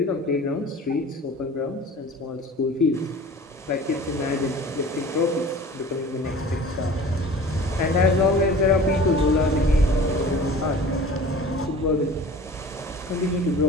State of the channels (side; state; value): both; normal; correlation 0.42